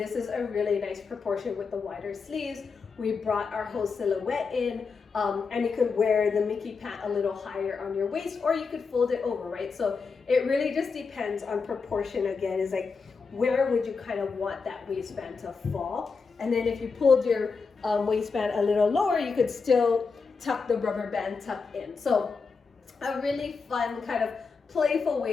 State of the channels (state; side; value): quieter; right; 4.9 dB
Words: is a really nice proportion with the wider sleeves. We brought our whole silhouette in, and you could wear the Miki Pant a little higher on your waist, or you could fold it over, right? So it really just depends on proportion. Again, is like, where would you kind of want that waistband to fall? And then if you pulled your waistband a little lower, you could still tuck the rubber band tuck in. So a really fun kind of playful